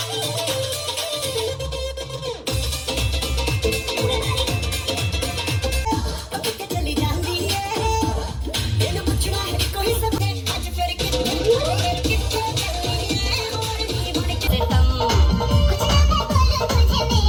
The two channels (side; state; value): both; identical; correlation 1.00